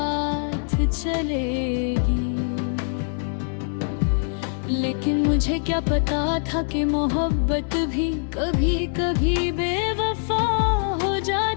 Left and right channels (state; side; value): silent; right; digital silence